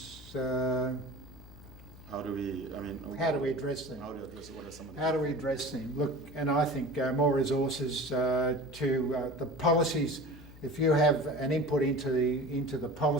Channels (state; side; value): noise; left; hum, 19 dB below the sound